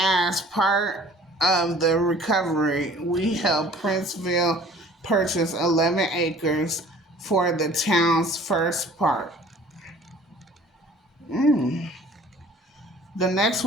part of the recovery, we helped Princeville purchase 11 acres for the town's first park. The next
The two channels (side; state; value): both; normal; correlation 0.49